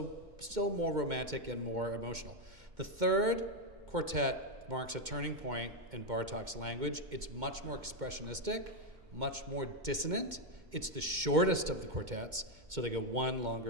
still more romantic and more emotional. The third quartet marks a turning point in Bartók's language. It's much more expressionistic, much more dissonant. It's the shortest of the quartets, so they go 1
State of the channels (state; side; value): late; left; 2.1 ms